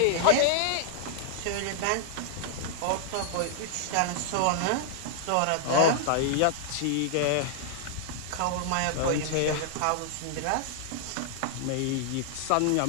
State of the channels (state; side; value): different; both; correlation -0.01